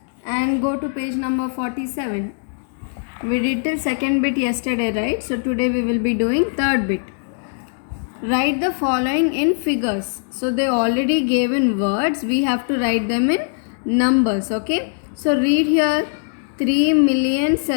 and go to page number 47. We did till second bit yesterday, right? So today we will be doing third bit. Write the following in figures. So they already gave in words. We have to write them in numbers, okay? So read here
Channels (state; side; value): silent; right; digital silence